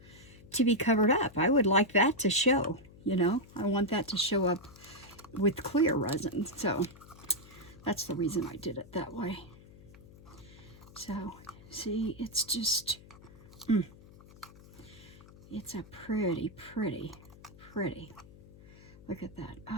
to be covered up. I would like that to show, you know. I want that to show up with clear resin. So that's the reason I did it that way. So see, it's just, it's a pretty. Look at that.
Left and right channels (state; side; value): noise; left; hum, 21 dB below the sound